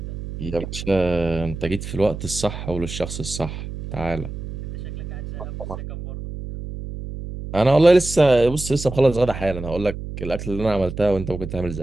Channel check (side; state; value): right; noise; hum, 9 dB below the sound